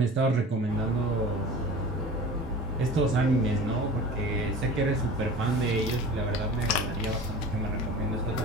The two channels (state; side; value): normal; both; correlation 0.37